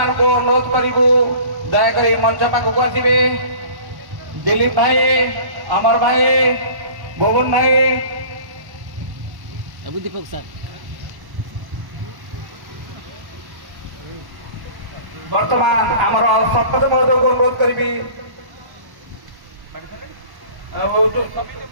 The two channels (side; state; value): left; late; 1.1 ms